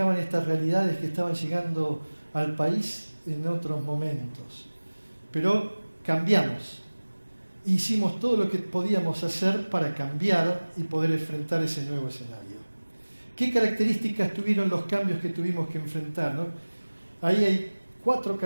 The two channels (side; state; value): both; inverted; correlation -1.00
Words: estas realidades que estaban llegando al país en otros momentos. Pero cambiamos. Hicimos todo lo que podíamos hacer para cambiar y poder enfrentar ese nuevo escenario. ¿Qué características tuvieron los cambios que tuvimos que enfrentar, ¿no? Ahí hay 4